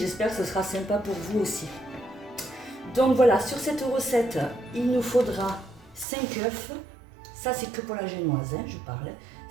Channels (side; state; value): left; drops out; at 6.1 s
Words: que ce sera sympa pour vous aussi. Donc voilà, sur cette recette, il nous faudra 5 œufs. Ça, c'est que pour la génoise, hein, je parle.